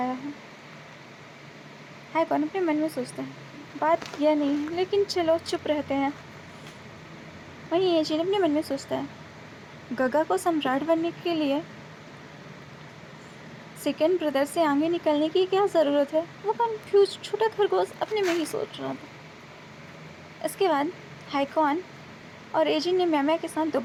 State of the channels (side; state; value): both; identical; correlation 1.00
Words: है कौन? अपने मन में सोचता है, बात यह नहीं है, लेकिन चलो चुप रहते हैं। वहीं एजेंट अपने मन में सोचता है, गगा को सम्राट बनने के लिए सेकेंड ब्रदर से आगे निकलने की क्या ज़रूरत है? वो कंफ्यूज छोटा खरगोश अपने में ही सोच रहा था। इसके बाद हैकॉन और एजिन ने मैमा के साथ